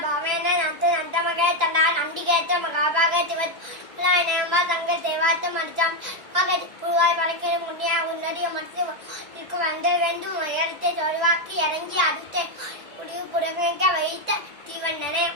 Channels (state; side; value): late; left; 1.9 ms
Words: நத்து நந்தமகே தண்டா நண்டிகேத்த மகாபாக சிவத் நேம்பா தங்க தேவாத்த மடிச்சாம் மகதி புழுவாய் பழக்கிற முன்னியா உன்னதிய மனசு இருக்கும் வந்த வேண்டும் உயரத்தை தொழிவாக்கி இறங்கி அடுத்த முடிவு புறவேங்க வைத்த தீவண்ணனே